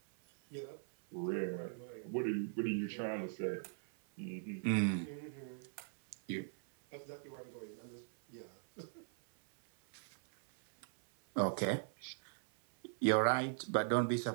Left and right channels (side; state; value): left; silent; 51 dB below the other